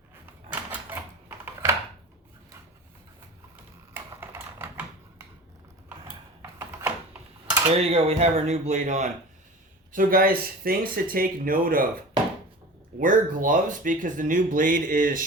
There you go, we have our new blade on. So guys, things to take note of. Wear gloves because the new blade is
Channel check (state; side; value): normal; both; correlation 0.36